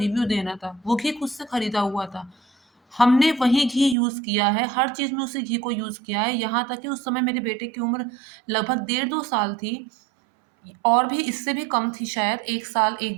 देना था। वो घी खुद से खरीदा हुआ था। हमने वही घी यूज़ किया है, हर चीज़ में उसी घी को यूज़ किया है, यहाँ तक कि उस समय मेरे बेटे की उम्र लगभग डेढ़ 2 साल थी और भी इससे भी कम थी शायद, 1 साल, 1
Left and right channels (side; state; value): left; drops out; at 4.0 s